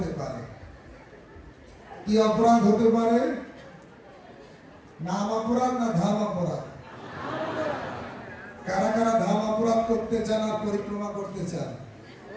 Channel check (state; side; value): identical; both; correlation 1.00